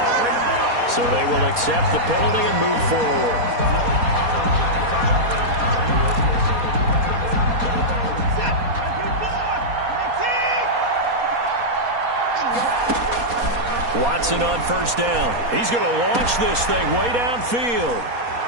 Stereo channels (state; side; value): late; left; 4.2 ms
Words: So they will accept the penalty and move forward. Watson on first down. He's going to launch this thing way downfield.